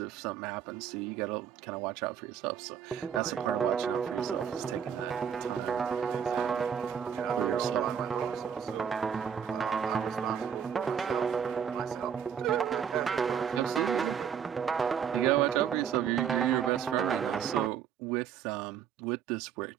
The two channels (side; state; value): left; quieter; 7.9 dB